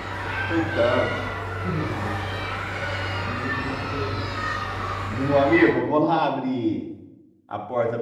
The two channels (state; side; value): identical; both; correlation 1.00